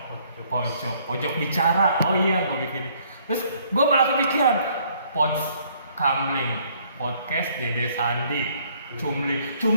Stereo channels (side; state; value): both; inverted; correlation -0.63